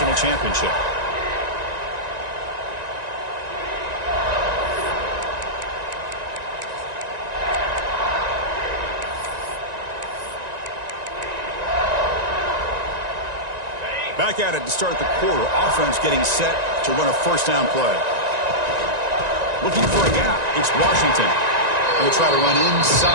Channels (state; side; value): late; left; 1.9 ms